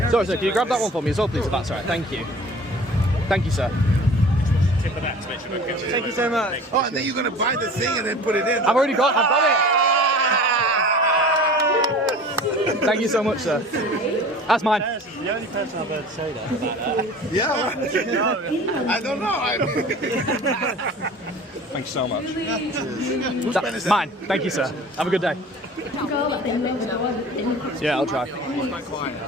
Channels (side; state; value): both; normal; correlation 0.42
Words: Sorry, sir, can you grab that one for me as well, please, if that's all right? Thank you. Thank you, sir. Tip of that to make sure we're good. Thank you so much. Oh, and then you're going to buy the thing and then put it in. I've got it. Thank you so much, sir. That's mine. the only person I've heard say that about that. Yeah, I don't know. Thank you so much. Who's Mine. Thank you, sir. Have a good day. Yeah, I'll try.